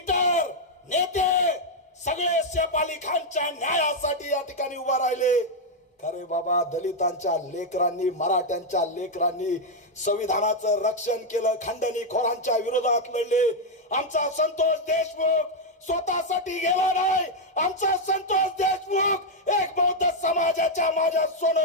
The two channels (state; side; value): normal; both; correlation 0.00